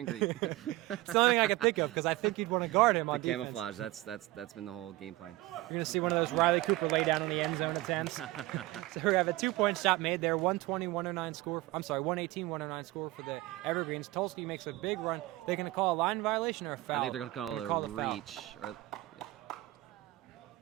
green. It's the only thing I can think of because I think you'd want to guard him on the defense. camouflage. That's been the whole game plan. You're going to see one of those Riley Cooper lay down on the end zone attempts. So we have a 2-point shot made there. 120-109 score. I'm sorry, 118-109 score for the Evergreens. Tulsky makes a big run. They're going to call a line violation or a foul? I think they're going to call it a reach.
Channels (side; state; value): left; quieter; 18.8 dB